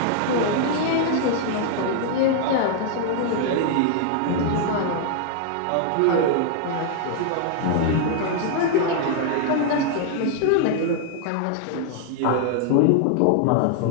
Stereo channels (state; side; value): different; both; correlation 0.00